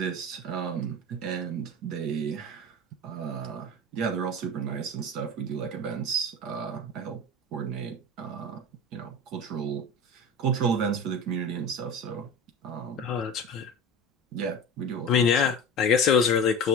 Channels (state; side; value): normal; both; correlation 0.31